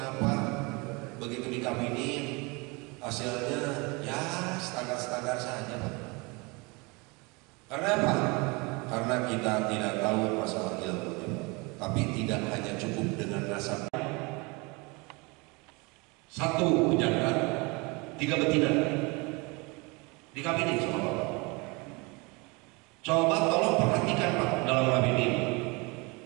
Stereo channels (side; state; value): left; quieter; 27.4 dB